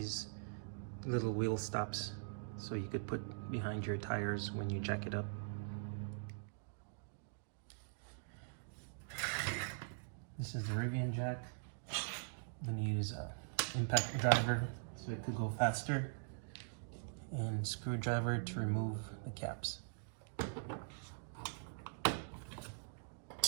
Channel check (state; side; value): silent; left; digital silence